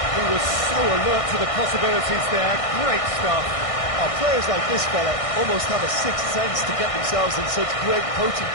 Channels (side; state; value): right; late; 1.6 ms